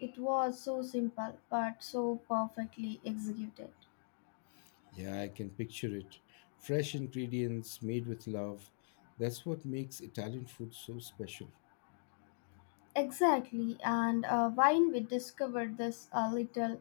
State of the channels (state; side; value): silent; right; digital silence